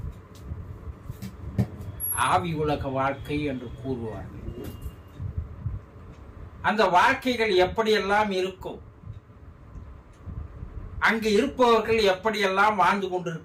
ஆவி உலக வாழ்க்கை என்று கூறுவார்கள். அந்த வாழ்க்கைகள் எப்படியெல்லாம் இருக்கும், அங்கு இருப்பவர்கள் எப்படியெல்லாம் வாழ்ந்து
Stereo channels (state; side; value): identical; both; correlation 1.00